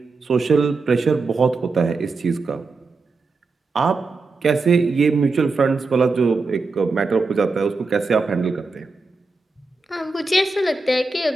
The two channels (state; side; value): quieter; left; 3.9 dB